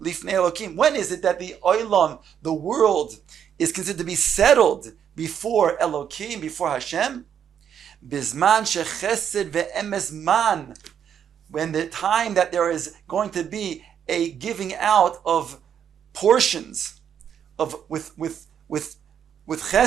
lifnei Elokim. When is it that the oilam, the world, is considered to be settled before Elokim, before Hashem? Bizman shechesed ve'emes man. When the time that there is going to be a giving out of portions of with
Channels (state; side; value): quieter; left; 8.6 dB